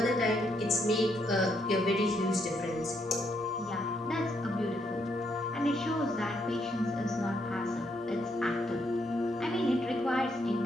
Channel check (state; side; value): normal; both; correlation 0.75